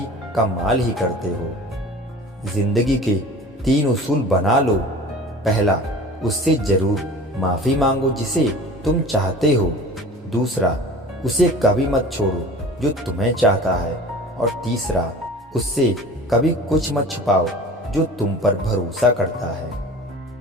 कमाल ही करते हो। जिंदगी के 3 उसूल बना लो। पहला, उससे जरूर माफ़ी मांगो जिसे तुम चाहते हो। दूसरा, उसे कभी मत छोड़ो जो तुम्हें चाहता है। और तीसरा, उससे कभी कुछ मत छुपाओ जो तुम पर भरोसा करता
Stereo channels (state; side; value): normal; both; correlation 0.41